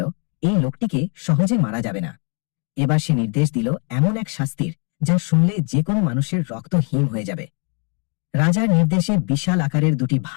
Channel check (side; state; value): right; quieter; 38.7 dB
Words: এই লোকটিকে সহজে মারা যাবে না। এবার সে নির্দেশ দিল এমন এক শাস্তির, যা শুনলে যে কোনো মানুষের রক্ত হিম হয়ে যাবে। রাজার নির্দেশে বিশাল আকারের 2টি